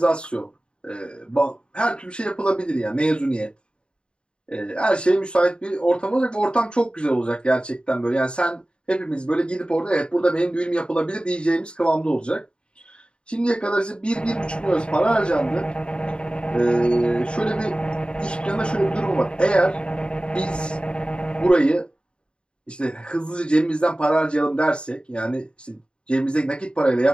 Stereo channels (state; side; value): late; right; 0.053 ms